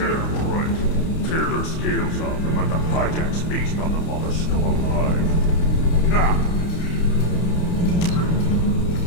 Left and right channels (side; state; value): right; late; 30 ms